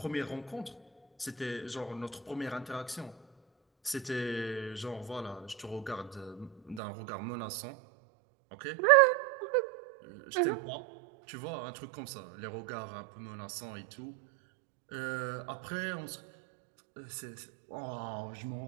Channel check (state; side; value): drops out; left; at 6.8 s